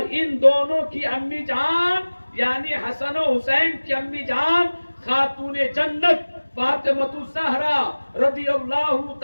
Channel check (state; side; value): inverted; both; correlation -1.00